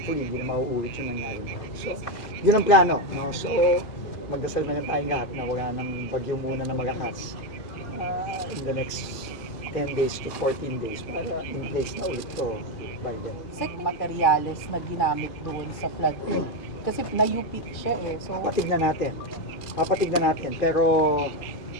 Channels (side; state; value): right; late; 2.4 ms